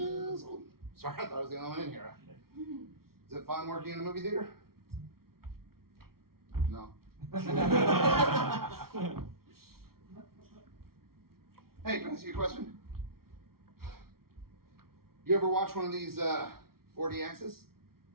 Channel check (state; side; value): late; left; 0.94 ms